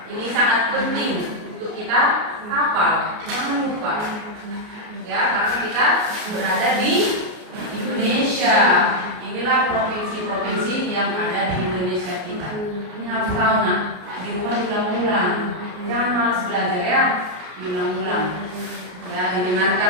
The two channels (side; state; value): left; late; 33 ms